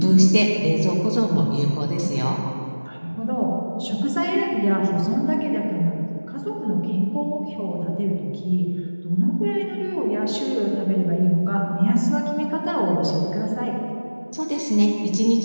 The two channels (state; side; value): inverted; both; correlation -1.00